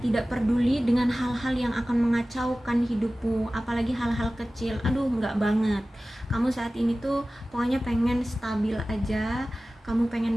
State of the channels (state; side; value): normal; both; correlation 0.96